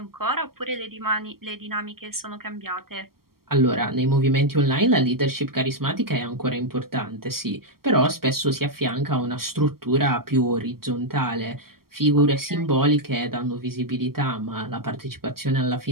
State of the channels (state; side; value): late; left; 0.93 ms